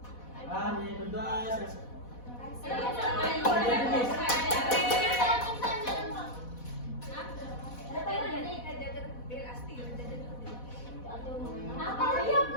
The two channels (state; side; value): late; right; 4.1 ms